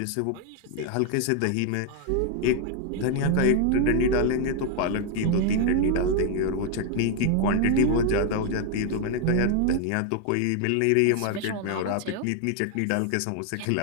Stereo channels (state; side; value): different; both; correlation 0.00